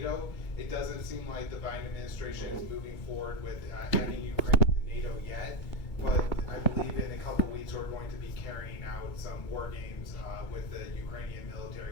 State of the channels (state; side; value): late; right; 2.2 ms